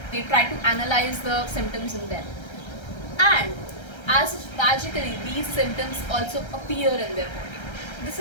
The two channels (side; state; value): right; late; 1.3 ms